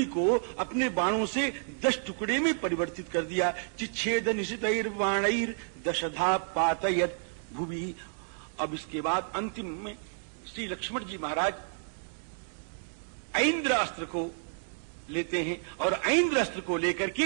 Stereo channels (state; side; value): silent; left; digital silence